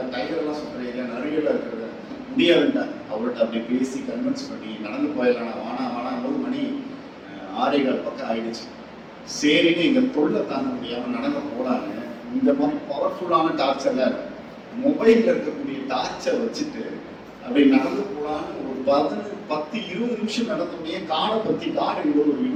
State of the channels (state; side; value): identical; both; correlation 1.00